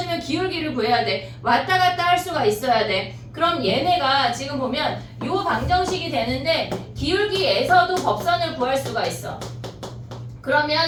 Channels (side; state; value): both; identical; correlation 1.00